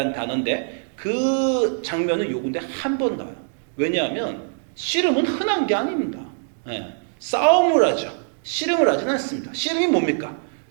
단어인데 그 장면은 요건데 한 번 나와요. 왜냐하면 씨름은 흔한 게 아닙니다. 싸움을 하죠. 씨름을 하진 않습니다. 씨름이 뭡니까?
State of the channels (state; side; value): silent; left; digital silence